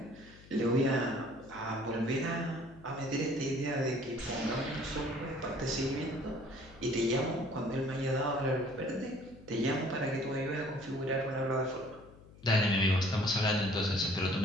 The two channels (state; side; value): noise; left; hum, 21 dB below the sound